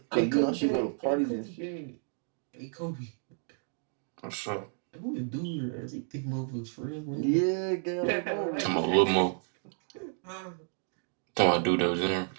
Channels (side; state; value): left; silent; 57 dB below the other